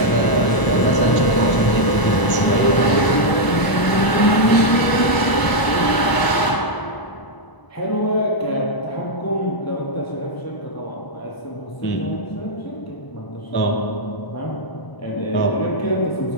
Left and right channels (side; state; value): right; late; 1.0 ms